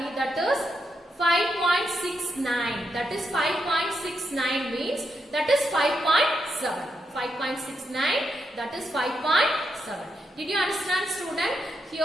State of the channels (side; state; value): both; normal; correlation 0.82